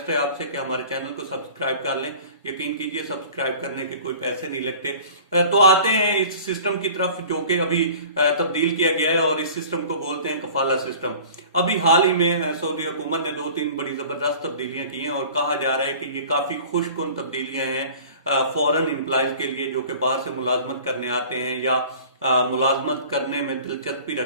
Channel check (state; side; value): inverted; both; correlation -0.44